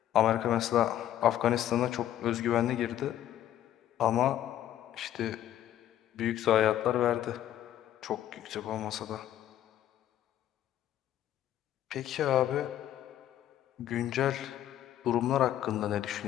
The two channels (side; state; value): right; quieter; 12.0 dB